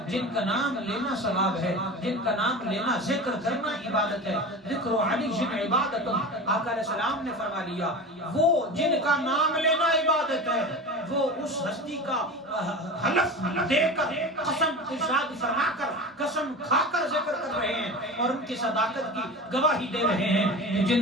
جن کا نام لینا ثواب ہے، جن کا نام لینا ذکر کرنا عبادت ہے، ذکر علی جن عبادت، آقا علیہ السلام نے فرما لیا وہ جن کا نام لینا عبادت ہے وہ اس ہستی کا حلف دے کر قسم ارشاد فرما کر قسم کھا کر ذکر کر رہے ہیں اور ان کی صداقت کی گواہی دے رہے ہیں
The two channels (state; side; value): normal; both; correlation 0.31